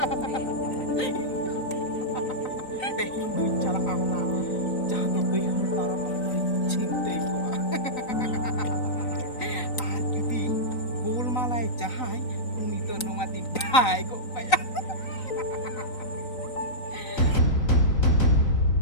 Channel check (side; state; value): right; late; 3.9 ms